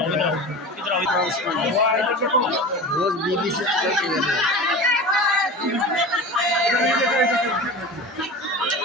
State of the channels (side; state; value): both; normal; correlation 0.32